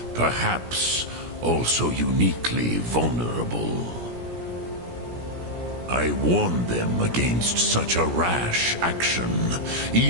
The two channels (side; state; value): left; late; 17 ms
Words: Perhaps also uniquely vulnerable. I warned them against such a rash action.